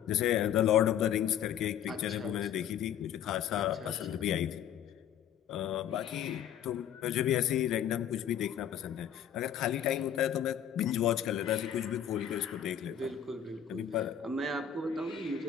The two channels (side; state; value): right; quieter; 9.4 dB